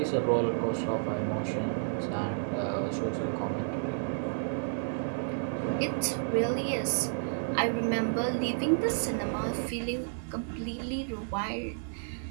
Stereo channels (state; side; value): silent; left; 57 dB below the other